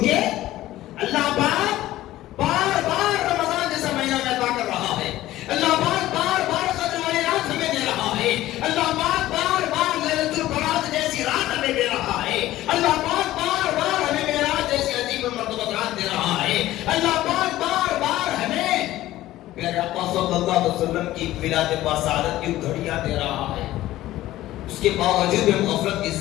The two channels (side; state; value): right; quieter; 15.3 dB